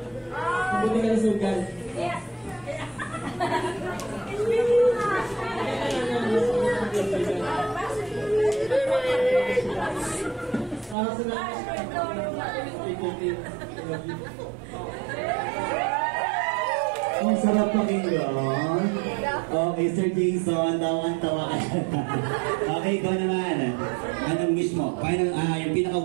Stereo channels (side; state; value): left; drops out; at 11.0 s